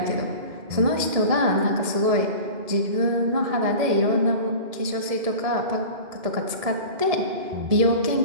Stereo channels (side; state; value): left; late; 1.7 ms